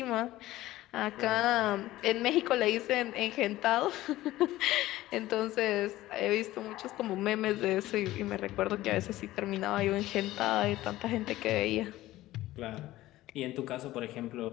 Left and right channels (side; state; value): right; quieter; 16.2 dB